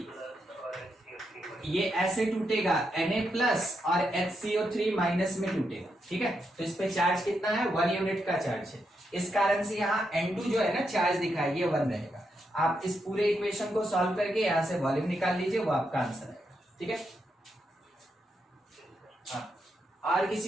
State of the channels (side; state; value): both; normal; correlation 0.82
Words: ये ऐसे टूटेगा, Na प्लस और HCO3 माइनस में टूटेगा। ठीक है, तो इस पे चार्ज कितना है 1 यूनिट का चार्ज है। इस कारण से यहाँ N2 जो है ना चार्ज दिखा है ये 1 रहेगा। आप इस पूरे इक्वेशन को सॉल्व करके यहाँ से वॉल्यूम निकाल लीजिए, वो आपका आंसर है। ठीक है, हाँ। और